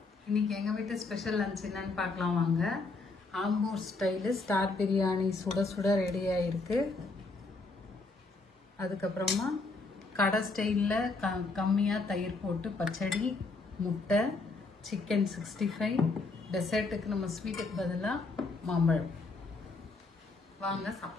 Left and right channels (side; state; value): right; quieter; 3.6 dB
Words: இன்னைக்கு எங்க வீட்டு ஸ்பெஷல் லஞ்ச் என்னன்னு பார்க்கலாம் வாங்க. ஆம்பூர் ஸ்டைல் ஸ்டார் பிரியாணி சுட சுட ரெடி ஆயிருக்கு. அதுக்கப்புறமா கடை ஸ்டைலில் கம்மியா தயிர் போட்டு பச்சடி, முட்டை, சிக்கன் 65. டெசர்ட்டுக்கு நம்ம ஸ்வீட்டுக்கு பதிலாக மாம்பழம். வாங்க